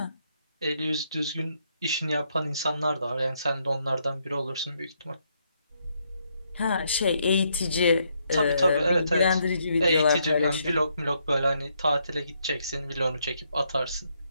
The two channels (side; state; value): both; inverted; correlation -0.75